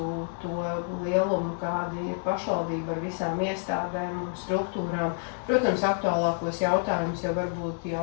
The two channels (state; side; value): silent; right; digital silence